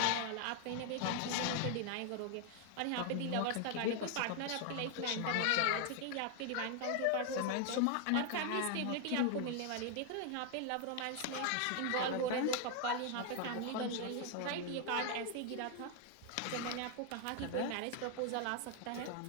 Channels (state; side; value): different; both; correlation 0.00